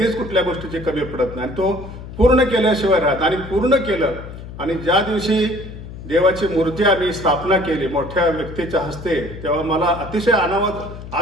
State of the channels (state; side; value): noise; left; hum, 12 dB below the sound